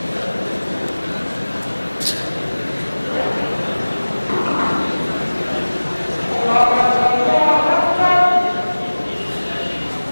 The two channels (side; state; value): both; inverted; correlation -1.00